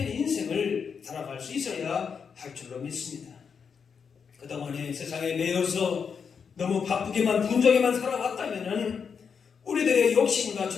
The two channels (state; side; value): quieter; right; 6.4 dB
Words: 인생을 살아갈 수 있어야 할 줄로 믿습니다. 그동안에 세상에 매여서 너무 바쁘게만 분주하게만 살아왔다면 우리들의 욕심과